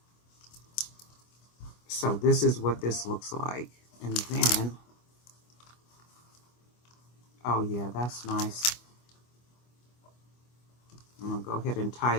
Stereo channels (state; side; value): late; right; 25 ms